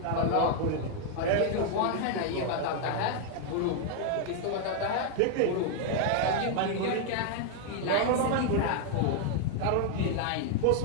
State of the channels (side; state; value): both; different; correlation 0.00